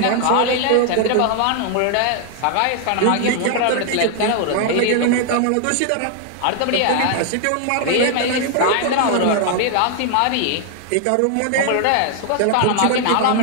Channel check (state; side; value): different; both; correlation 0.00